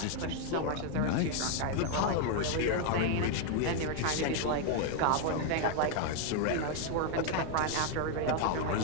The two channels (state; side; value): different; both; correlation 0.00